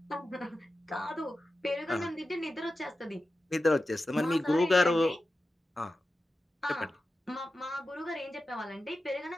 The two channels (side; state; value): both; normal; correlation 0.92